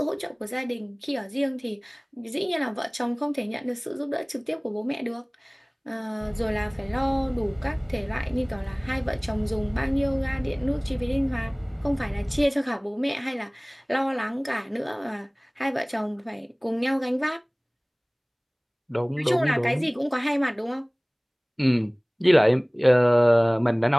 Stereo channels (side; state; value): both; identical; correlation 1.00